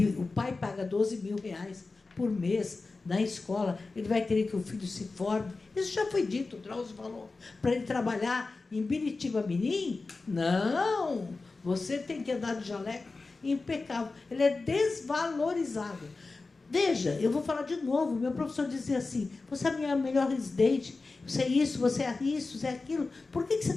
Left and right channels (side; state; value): right; quieter; 3.8 dB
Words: o pai paga R$12.000 por mês na escola, ele vai querer que o filho se forme? Isso já foi dito, o Drauzio falou. Para ele trabalhar em Biritiba-Mirim? Não! Você tem que andar de jaleco impecável. Ele é desvalorizado. Veja, eu vou falar de novo. Meu professor dizia assim: você é a minha melhor residente, você é isso, você é isso, você é aquilo. Por que você